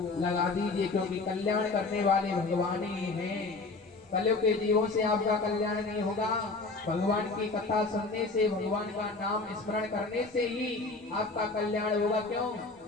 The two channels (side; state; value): right; quieter; 3.7 dB